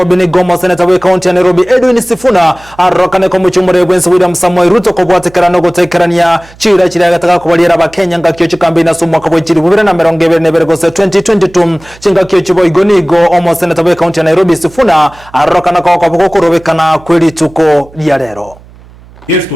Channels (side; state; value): right; noise; hum, 24 dB below the sound